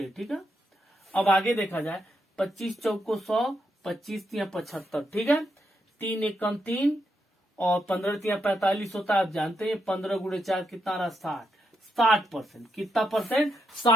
ठीक है, अब आगे देखा जाए, 25 चौको 100, 25 तिया 75। ठीक है, 3 एकम 3 और 15 तिया 45 होता है। आप जानते हैं 15 गुणे 4 कितना रहा, 60%। कितना परसेंट,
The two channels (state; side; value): normal; both; correlation 0.82